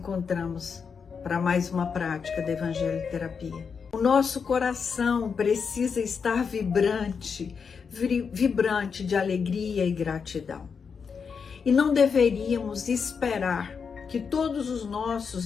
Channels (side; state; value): right; quieter; 6.0 dB